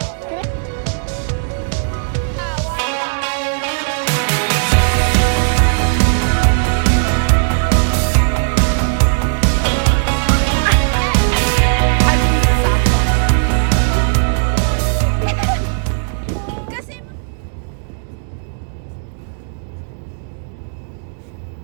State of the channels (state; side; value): silent; left; digital silence